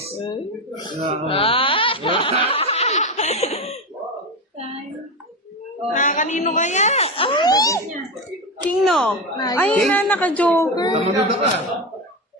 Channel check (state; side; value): normal; both; correlation 0.17